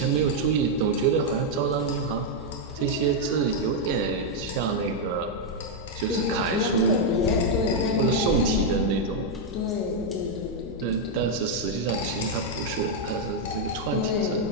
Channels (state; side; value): normal; both; correlation -0.01